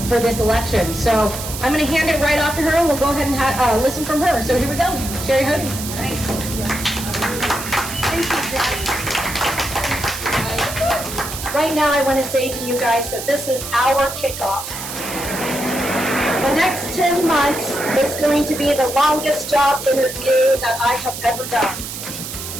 for this election. So I'm going to hand it right off to her, and we'll go ahead and listen from her. So here we go, Sherri Hodies. Thank you, Jess. Right now, I want to say to you guys that this is our kickoff. The next 10 months is going to be the longest job interview that I have ever done.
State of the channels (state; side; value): noise; right; hiss, 8 dB below the sound